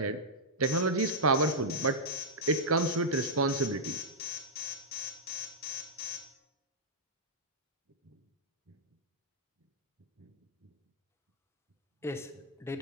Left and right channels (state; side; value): normal; both; correlation -0.08